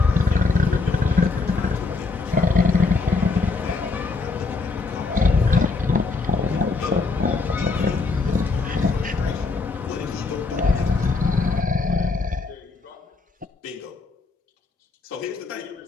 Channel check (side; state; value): right; quieter; 3.9 dB